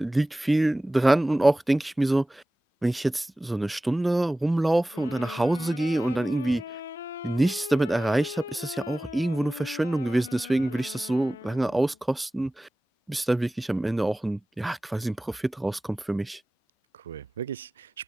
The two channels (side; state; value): both; normal; correlation 0.97